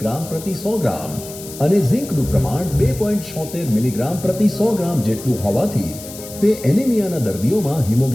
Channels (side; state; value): left; noise; hiss, 14 dB below the sound